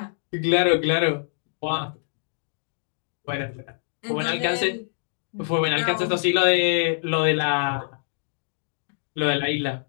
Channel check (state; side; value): silent; right; digital silence